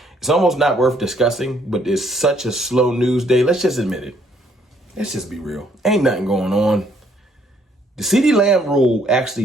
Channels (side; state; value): both; normal; correlation 0.66